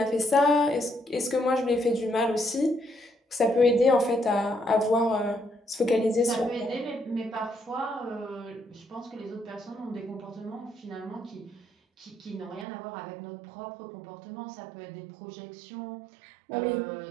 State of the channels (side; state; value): left; drops out; at 12.7 s